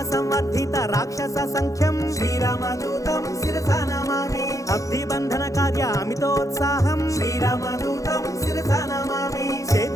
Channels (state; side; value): late; right; 0.16 ms